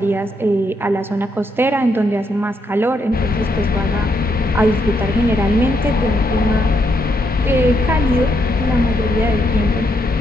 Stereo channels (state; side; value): normal; both; correlation 0.77